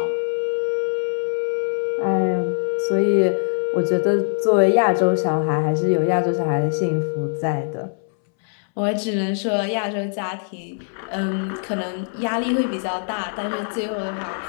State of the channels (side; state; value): right; silent; 64 dB below the other